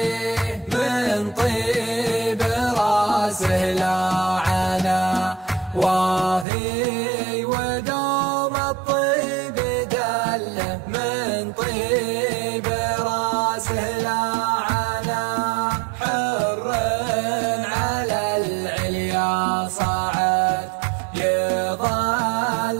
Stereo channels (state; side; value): drops out; left; at 6.5 s